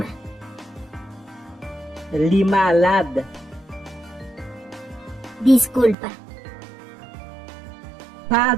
Li malade. Disculpa.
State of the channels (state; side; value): drops out; left; at 6.0 s